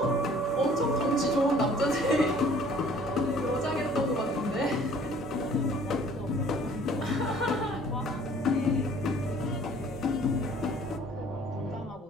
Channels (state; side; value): normal; both; correlation 0.54